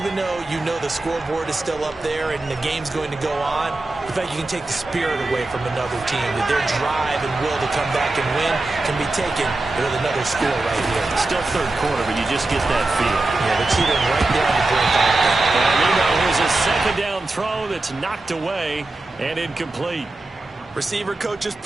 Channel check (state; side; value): quieter; left; 3.0 dB